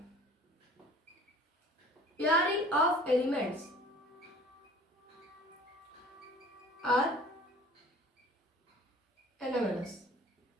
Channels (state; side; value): normal; both; correlation 0.48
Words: pairing of elements are anomalous,